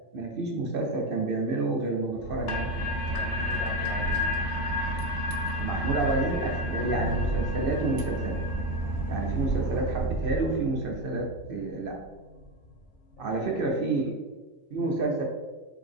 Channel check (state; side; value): normal; both; correlation 0.14